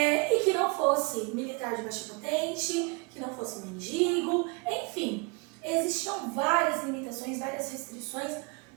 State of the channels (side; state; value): left; quieter; 30.8 dB